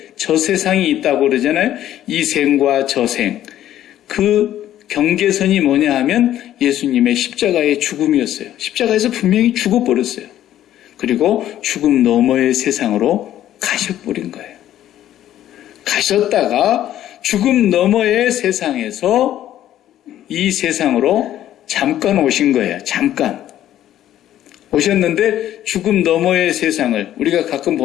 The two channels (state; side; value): quieter; right; 12.2 dB